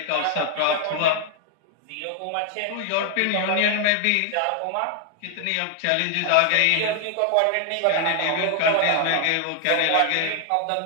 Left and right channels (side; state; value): both; different; correlation 0.00